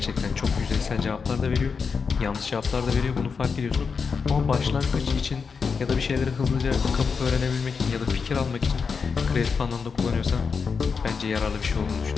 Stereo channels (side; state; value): right; quieter; 5.5 dB